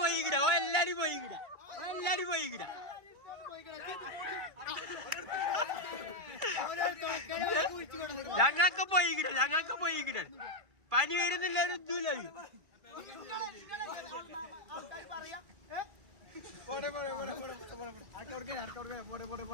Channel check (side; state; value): left; late; 2.5 ms